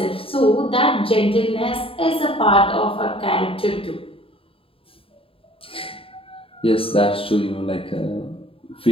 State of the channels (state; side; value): late; right; 0.27 ms